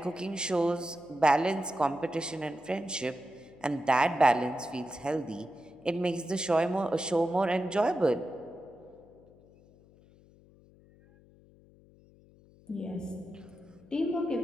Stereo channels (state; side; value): noise; left; hum, 26 dB below the sound